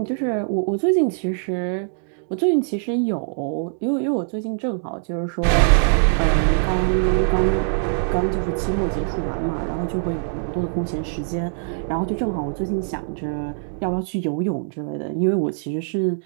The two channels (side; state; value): left; silent; digital silence